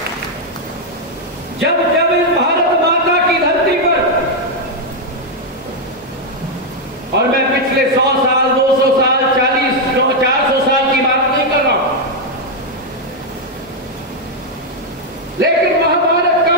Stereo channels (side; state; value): both; normal; correlation 0.00